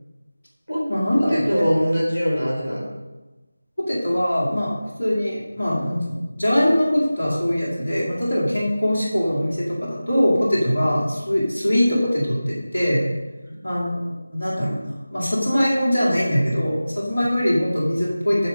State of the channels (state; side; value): inverted; both; correlation -0.97